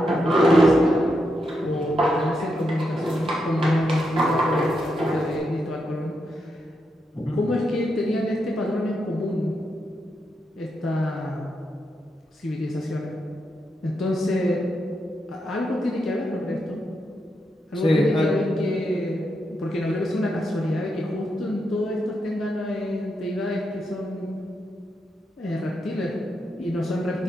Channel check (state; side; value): normal; both; correlation 0.83